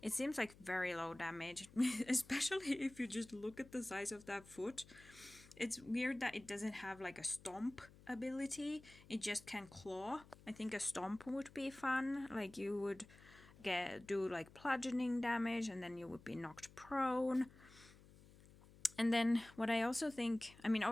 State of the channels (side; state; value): left; noise; hum, 22 dB below the sound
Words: it seems like very low damage, especially if you just look at the size of that foot. It's weird that it doesn't have like a stomp ability. It just can claw. I think a stomp would be fun. Like you would do like bludgeoning damage, and then you would be knocked prone. And then what I also think, I mean,